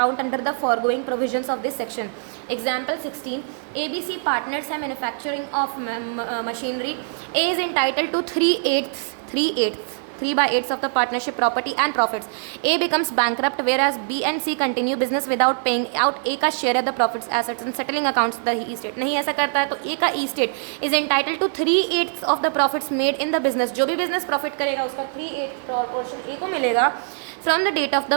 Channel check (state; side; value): silent; left; digital silence